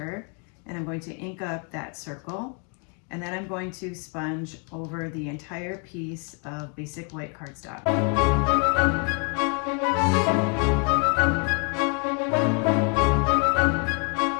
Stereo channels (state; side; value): quieter; right; 36.3 dB